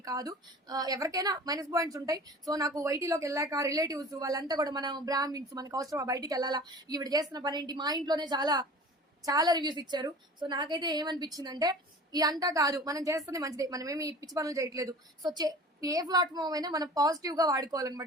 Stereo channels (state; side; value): normal; both; correlation 0.41